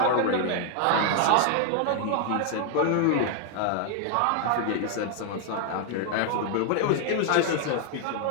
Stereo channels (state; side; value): different; both; correlation 0.00